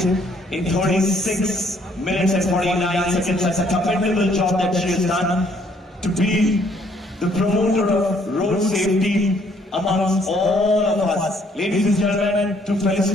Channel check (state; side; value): normal; both; correlation 0.65